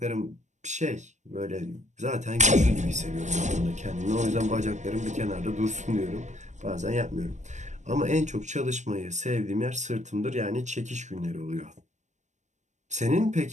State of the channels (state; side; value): late; left; 0.34 ms